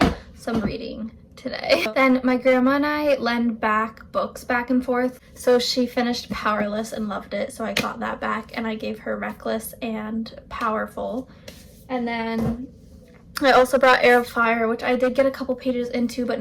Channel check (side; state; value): both; identical; correlation 1.00